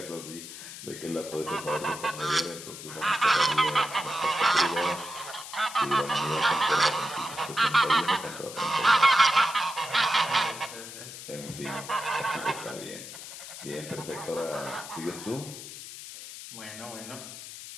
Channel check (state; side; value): noise; left; hiss, 12 dB below the sound